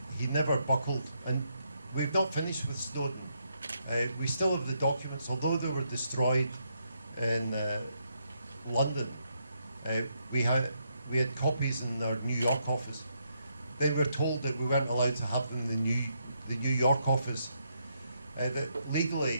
he never buckled. And we've not finished with Snowden. We still have the documents, although they were destroyed in London. We had copies in our New York office. Then we were told that we weren't allowed to have them in the New York office. That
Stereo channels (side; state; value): both; inverted; correlation -0.77